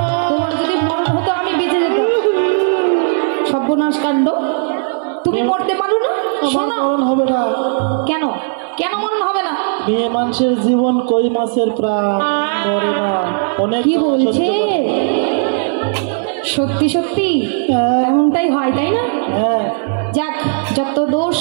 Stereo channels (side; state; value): left; silent; digital silence